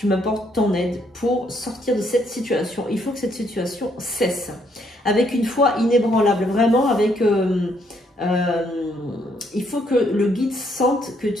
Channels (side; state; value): both; normal; correlation 0.71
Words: m'apportes ton aide pour sortir de cette situation. Il faut que cette situation cesse. Avec une foi inébranlable, vraiment avec... il faut que le guide sente que